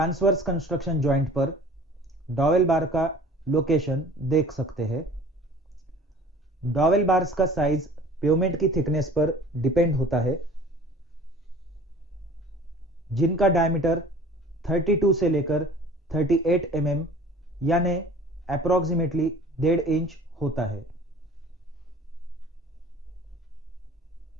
कंस्ट्रक्शन जॉइंट पर डॉवेल बार का लोकेशन देख सकते हैं। डॉवेल बार्स का साइज पेवमेंट की थिकनेस पर डिपेंड होता है, जिनका डायमीटर 32 से लेकर 38 mm यानी अप्रोक्सीमेटली 1.5 इंच होता है।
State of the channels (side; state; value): both; normal; correlation 0.46